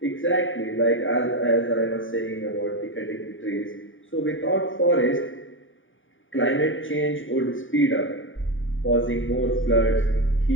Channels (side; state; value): right; late; 0.57 ms